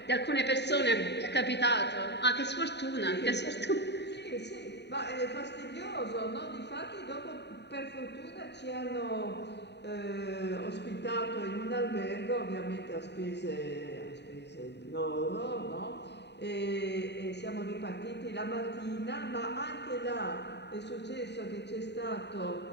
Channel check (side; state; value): right; late; 0.50 ms